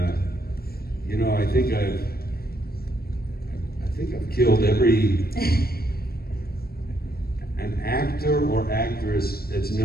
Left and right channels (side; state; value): right; late; 0.44 ms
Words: you know, I think I've killed every an actor or actress that's